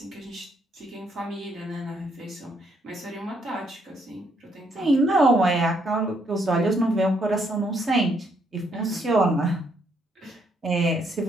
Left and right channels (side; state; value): both; normal; correlation 0.72